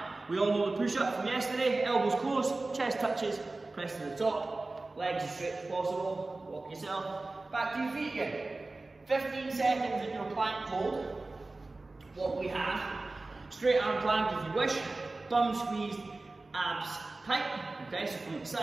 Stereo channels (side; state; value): left; quieter; 3.2 dB